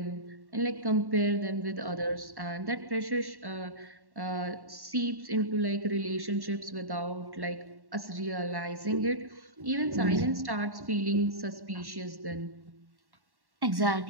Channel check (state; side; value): late; left; 1.1 ms